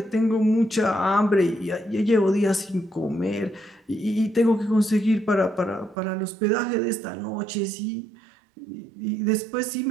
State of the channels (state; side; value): drops out; left; at 6.0 s